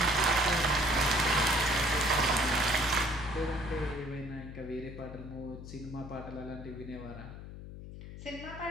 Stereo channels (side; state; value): left; noise; hum, 12 dB below the sound